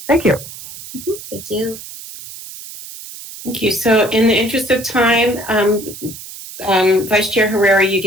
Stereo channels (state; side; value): noise; right; hiss, 14 dB below the sound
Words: Thank you. Thank you. Thank you. So in the interest of time, Vice Chair Herrera, you